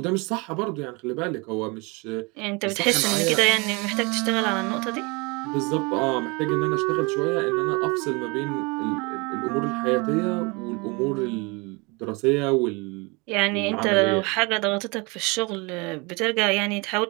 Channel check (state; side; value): quieter; left; 27.9 dB